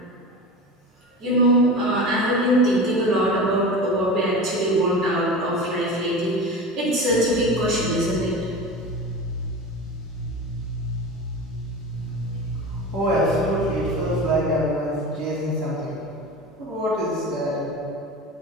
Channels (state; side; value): normal; both; correlation 0.30